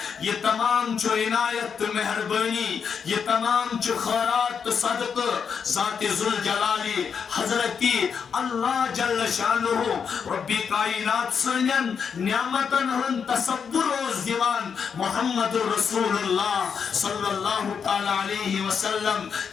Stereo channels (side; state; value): right; quieter; 6.6 dB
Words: یہ تمام جو عنایت مہربانی یہ تمام جو خیرات صدق ذات ذوالجلالی حضرتی اللہ جل شانہ ربی کائنات سنن نعمتن ہن تصور روز دیوان محمد رسول اللہ صلی اللہ تعالی علیہ وسلم